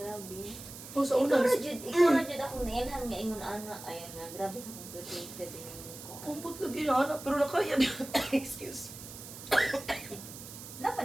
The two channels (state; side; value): noise; right; hiss, 13 dB below the sound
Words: Oh, sa una, Ikaw na jud akong nailhan nga ingon ana ay nga grabe ka complicated din ko. kumpot lagi na anak, pero nakaya niya. Excuse. Laban